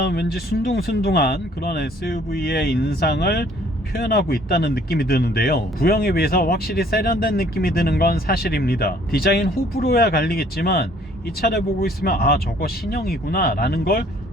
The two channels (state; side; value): normal; both; correlation 0.59